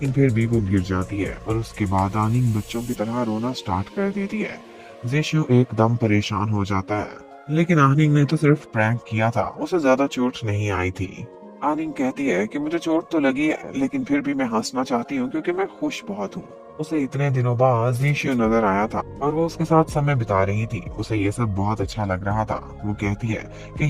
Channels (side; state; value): both; identical; correlation 1.00